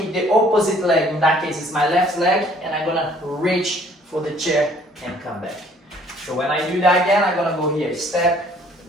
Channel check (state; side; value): normal; both; correlation 0.59